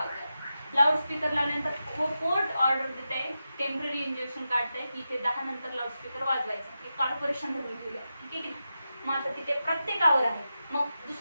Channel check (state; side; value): inverted; both; correlation -0.90